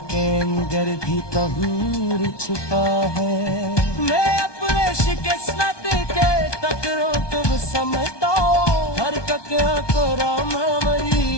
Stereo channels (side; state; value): right; late; 1.2 ms